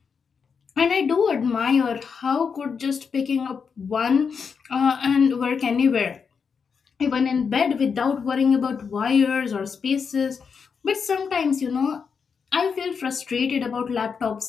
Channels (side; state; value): right; quieter; 6.0 dB